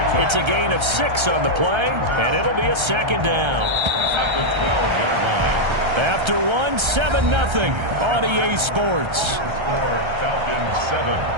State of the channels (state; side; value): late; left; 1.3 ms